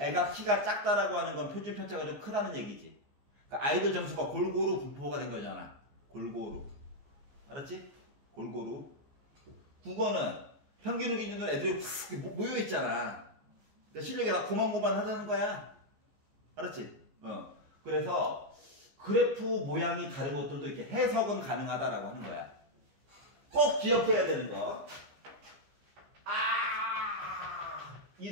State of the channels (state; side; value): late; left; 14 ms